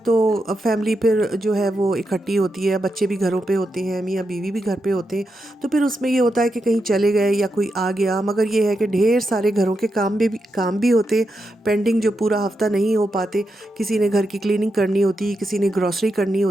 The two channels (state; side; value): normal; both; correlation 0.86